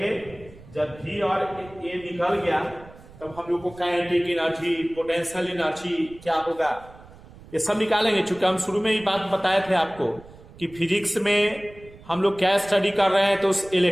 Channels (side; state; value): right; noise; rumble, 21 dB below the sound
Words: जब भी और ए निकल गया तब हम लोग को काइनेटिक एनर्जी, पोटेंशियल एनर्जी क्या होगा, ये सब निकालेंगे। चूंकि हम शुरू में ही बात बताए थे आपको कि फिजिक्स में हम लोग क्या स्टडी कर रहे हैं, तो उस